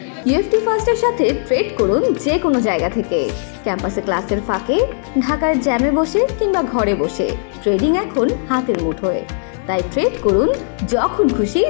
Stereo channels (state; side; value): silent; right; digital silence